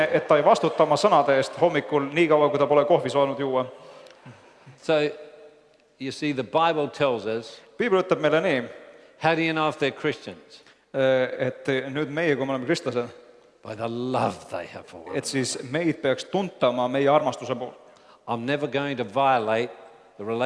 et ta ei vastuta oma sõnade eest hommikul nii kaua, kui ta pole kohvi saanud juua. So, you see, the Bible tells us, Piibel ütleb meile nii, how do you know if they're Christians? et nüüd meie, kui me oleme kristlased, By the love they have for us. et siis meid peaks tuntama meie armastuse poolt. I'm never going to violate the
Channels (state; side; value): identical; both; correlation 1.00